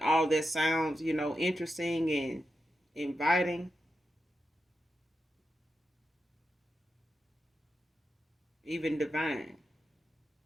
all that sounds, interesting and inviting, even divine.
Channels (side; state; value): both; normal; correlation 0.89